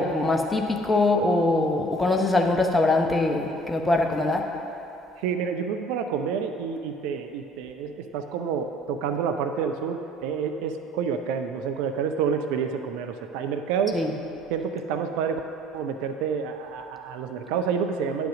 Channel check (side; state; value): both; normal; correlation 0.52